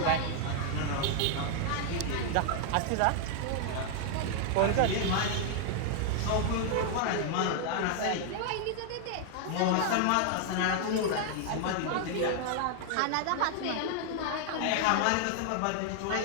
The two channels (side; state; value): both; different; correlation 0.00